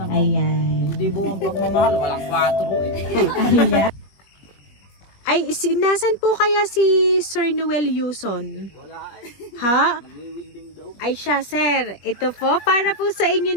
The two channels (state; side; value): late; right; 21 ms